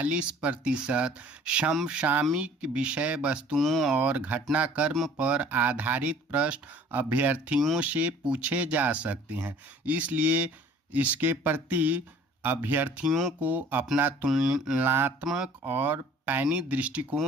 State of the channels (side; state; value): both; normal; correlation 0.51